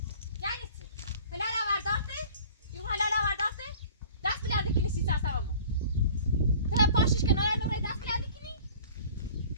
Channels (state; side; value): inverted; both; correlation -0.46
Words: یعنی چه حلال آوردارته یو حلال آوردارته دست بلنده کنی سی ساعت همون تو پاشش کنار نوره دست بلنده کنی